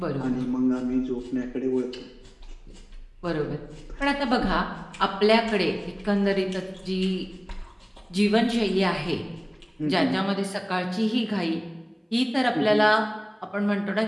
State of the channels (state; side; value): identical; both; correlation 1.00